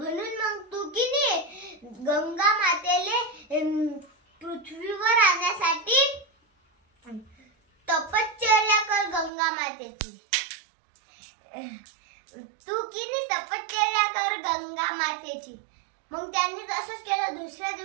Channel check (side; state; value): left; drops out; at 9.3 s